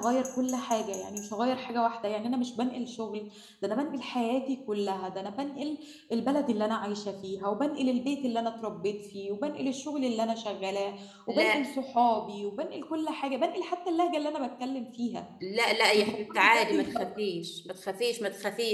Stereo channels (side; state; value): both; identical; correlation 1.00